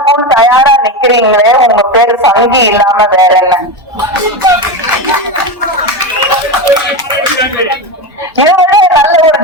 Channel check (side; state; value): both; normal; correlation 0.18